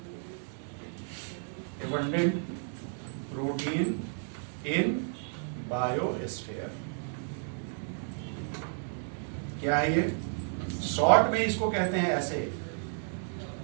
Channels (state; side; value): silent; left; 56 dB below the other